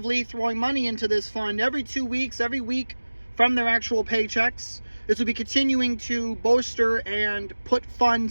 throwing money into this fund every 2 weeks, every week from their actual paychecks. This will be continuing to bolster and put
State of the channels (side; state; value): both; inverted; correlation -1.00